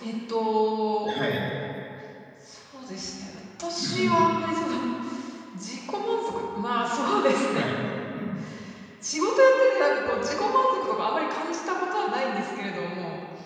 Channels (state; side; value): identical; both; correlation 1.00